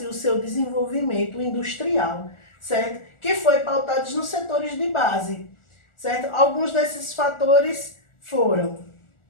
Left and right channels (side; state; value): right; late; 1.4 ms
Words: o seu desenvolvimento industrial, certo? Que foi pautado nos setores de base, certo? Alguns desses fatores foram